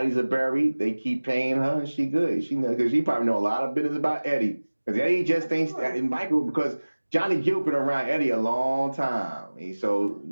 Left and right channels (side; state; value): both; inverted; correlation -1.00